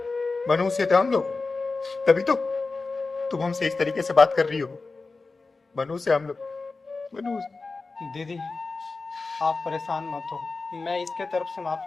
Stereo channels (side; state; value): right; quieter; 3.9 dB